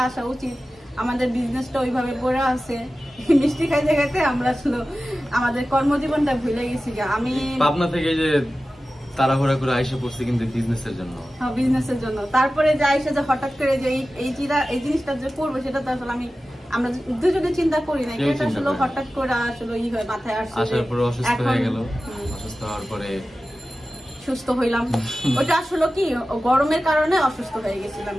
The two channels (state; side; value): normal; both; correlation 0.95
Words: আসা উচিত। আমাদের বিজনেসটা ওইভাবে পড়ে আছে, মিষ্টি খাইতে খাইতে আমরা আসলে আমাদের কর্মজীবনটা ভুলে গেছি। আমি পাবনা থেকে যে তাড়াহুড়া করে আইসা পড়ছি কিন্তু বিজনেসের জন্য। হ্যাঁ, বিজনেসের জন্য। তারপরে যে আইসা যে হঠাৎ করে যে এই জিনিসটা যে করবো সেটা তো আসলে আমরা দুজনে চিন্তা করি না, এটা আসলে হঠাৎ করে আসলে ই হয় মাথায় আসছে। আসার পরে অসুস্থ হয়ে গেল, অসুস্থ হওয়ার পরে সুস্থ হইলাম। ওটা আসলে কি গরমের কারণে অসুস্থ হয়ে গেছিলাম।